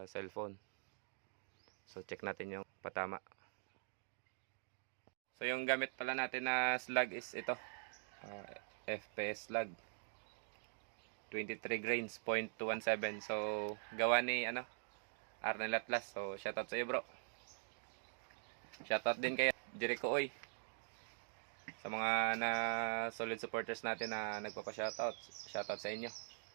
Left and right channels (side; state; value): left; silent; digital silence